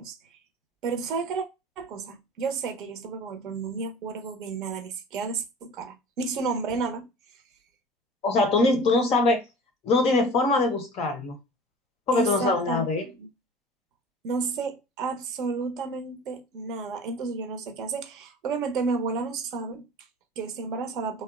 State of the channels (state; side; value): normal; both; correlation 0.41